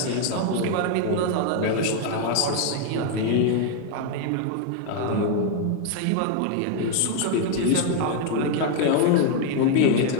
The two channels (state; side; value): different; both; correlation 0.00